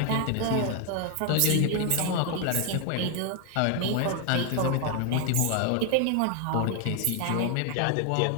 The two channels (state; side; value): different; both; correlation 0.00